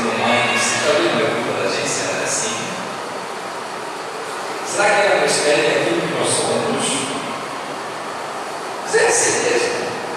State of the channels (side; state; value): both; identical; correlation 1.00